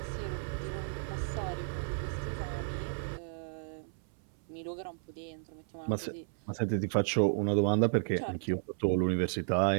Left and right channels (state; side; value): silent; left; 55 dB below the other